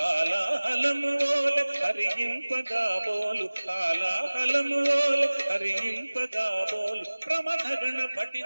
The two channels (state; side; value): inverted; both; correlation -1.00